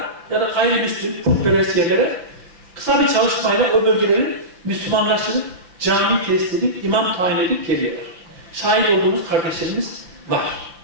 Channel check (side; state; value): left; late; 5.8 ms